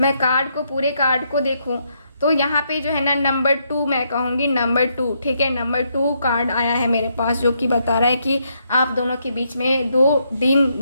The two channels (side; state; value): both; inverted; correlation -0.76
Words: कार्ड को, पूरे कार्ड को देखूं तो यहाँ पे जो है ना नंबर 2 मैं कहूँगी, नंबर 2। ठीक है, नंबर 2 कार्ड आया है मेरे पास जो कि बता रहा है कि आप दोनों के बीच में